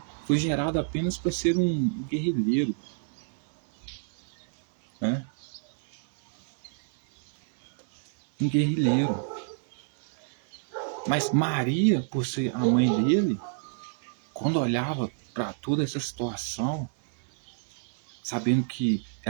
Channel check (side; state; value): left; silent; digital silence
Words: foi gerada apenas para ser um guerrilheiro. Né? Um guerrilheiro. Mas Maria, por ser a mãe dele, quando olhava para toda essa situação, sabendo que